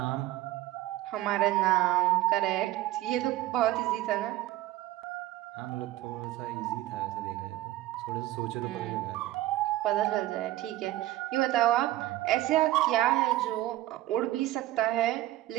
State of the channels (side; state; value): left; quieter; 15.8 dB